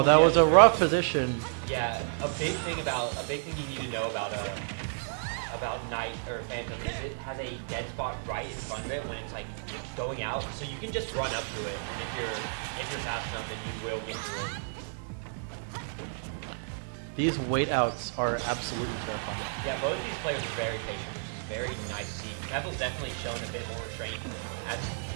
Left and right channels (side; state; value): left; silent; digital silence